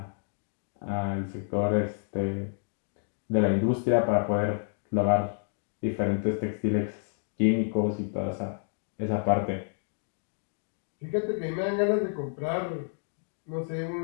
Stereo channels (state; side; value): silent; right; 58 dB below the other